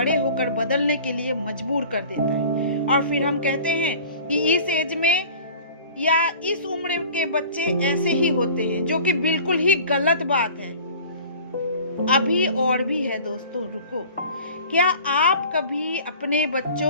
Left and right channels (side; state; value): both; inverted; correlation -0.44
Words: होकर बदलने के लिए मजबूर कर देता है। और फिर हम कहते हैं कि इस एज में या इस उम्र के बच्चे ऐसे ही होते हैं, जो कि बिल्कुल ही गलत बात है। अभी और भी है दोस्तों, रुको। क्या आप कभी अपने